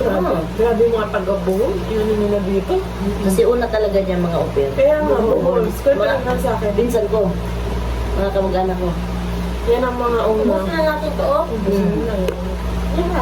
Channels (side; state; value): both; identical; correlation 1.00